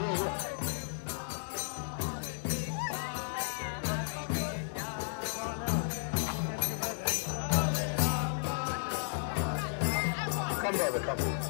Come, brother, come.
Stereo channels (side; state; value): right; silent; 55 dB below the other